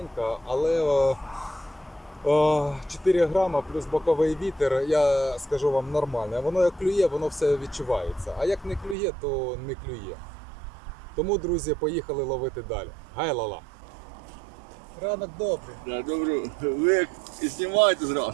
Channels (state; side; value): drops out; left; at 9.0 s